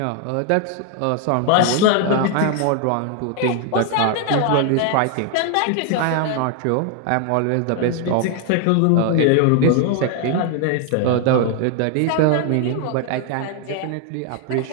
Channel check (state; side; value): different; both; correlation 0.00